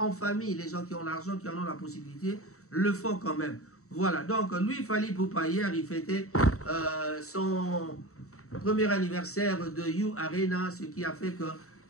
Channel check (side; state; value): right; late; 0.64 ms